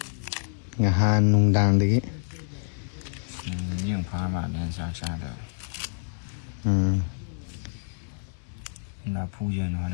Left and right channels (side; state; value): right; silent; 60 dB below the other